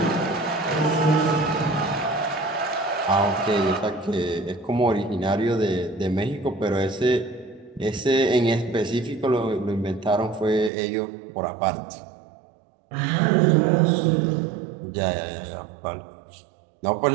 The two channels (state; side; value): drops out; left; at 10.7 s